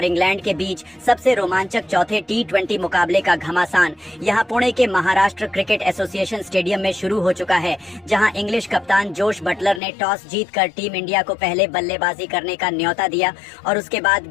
इंग्लैंड के बीच सबसे रोमांचक चौथे T20 मुकाबले का घमासान यहां पुणे के महाराष्ट्र क्रिकेट एसोसिएशन स्टेडियम में शुरू हो चुका है, जहां इंग्लिश कप्तान जोश बटलर ने टॉस जीतकर टीम इंडिया को पहले बल्लेबाजी करने का न्योता दिया और उसके बाद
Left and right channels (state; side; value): drops out; right; at 9.8 s